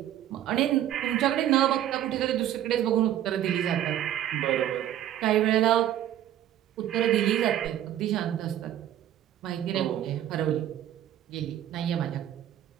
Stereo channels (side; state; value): left; quieter; 11.7 dB